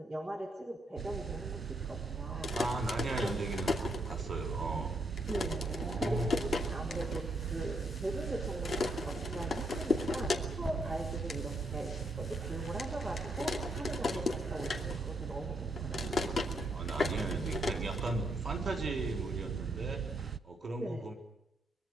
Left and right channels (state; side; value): normal; both; correlation 0.75